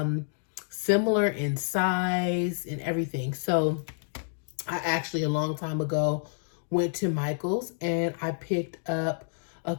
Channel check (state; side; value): silent; right; digital silence